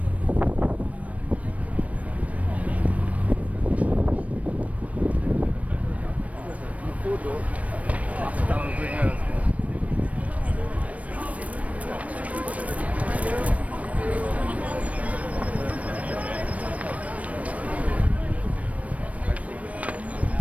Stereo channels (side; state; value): left; late; 0.066 ms